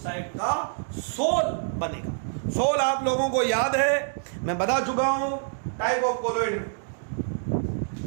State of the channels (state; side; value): silent; left; digital silence